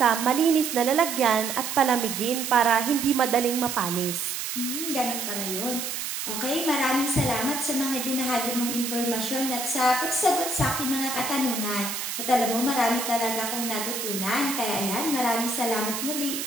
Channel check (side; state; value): right; noise; hiss, 4 dB below the sound